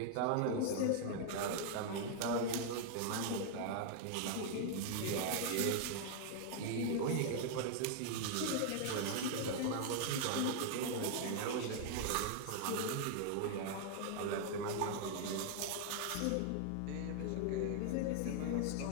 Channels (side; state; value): both; different; correlation 0.00